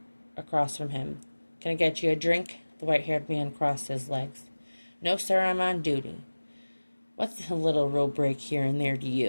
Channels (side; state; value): both; inverted; correlation -1.00